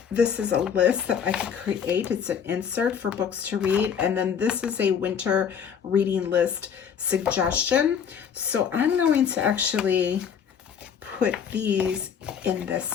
This is a list that I could create. It's an insert for books to read, and then this is a winter reading list suggestion. So I'm going to actually put these in this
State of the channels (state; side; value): quieter; right; 7.5 dB